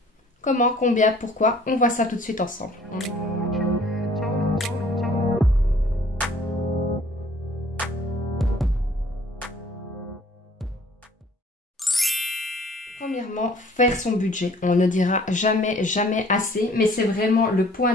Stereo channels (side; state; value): both; normal; correlation 0.56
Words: Comment, combien, pourquoi, on voit ça tout de suite ensemble. Premièrement, faire son budget. On ne dira jamais assez, mais c'est vraiment le point